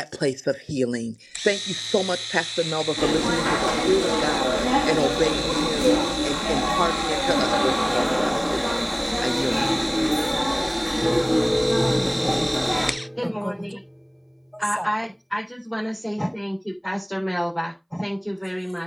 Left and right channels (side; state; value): both; identical; correlation 1.00